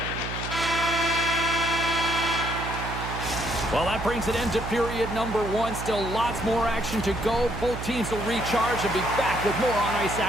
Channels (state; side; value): noise; right; hum, 7 dB below the sound